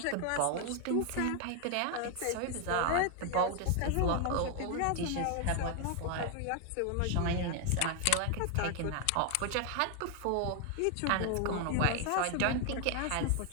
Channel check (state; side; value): different; both; correlation 0.00